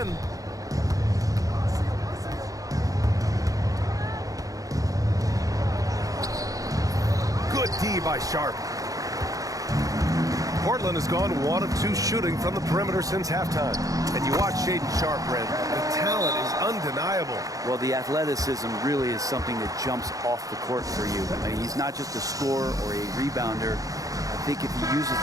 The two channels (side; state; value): left; late; 0.17 ms